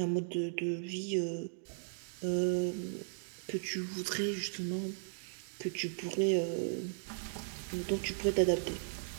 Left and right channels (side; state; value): left; silent; digital silence